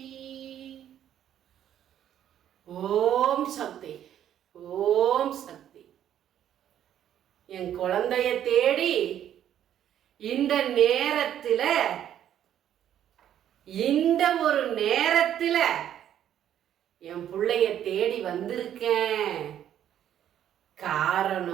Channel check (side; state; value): left; quieter; 10.6 dB